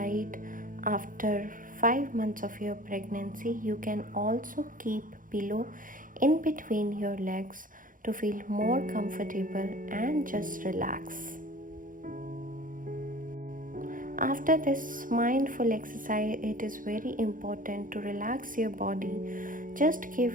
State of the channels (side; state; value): left; late; 0.39 ms